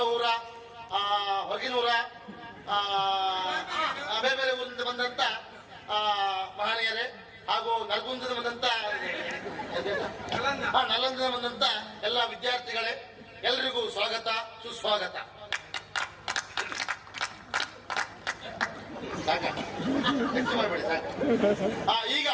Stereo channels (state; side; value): identical; both; correlation 1.00